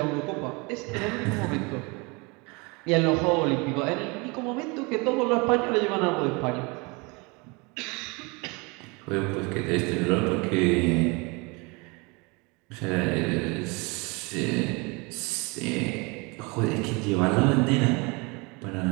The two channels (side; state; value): left; quieter; 28.1 dB